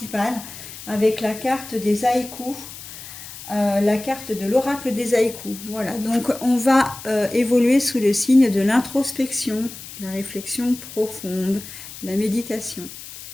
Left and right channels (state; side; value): noise; left; hiss, 14 dB below the sound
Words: avec la carte des haïkus, la carte de l'oracle des haïkus. Voilà, donc on va évoluer sous le signe de l'introspection, la réflexion profonde, la méditation.